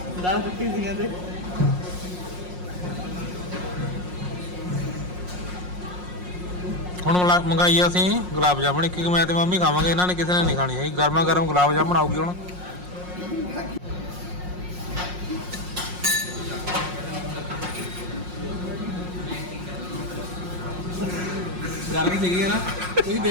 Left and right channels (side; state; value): left; late; 5.6 ms